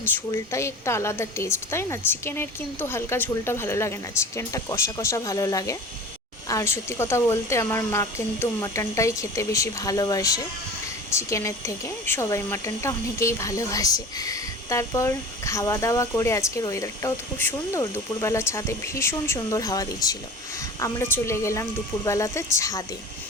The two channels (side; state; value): both; normal; correlation 0.37